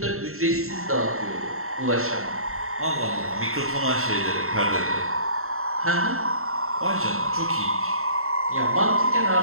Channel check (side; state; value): left; late; 0.62 ms